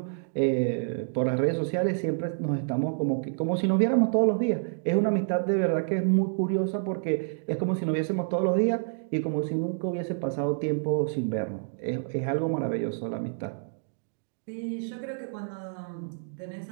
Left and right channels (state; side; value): silent; left; digital silence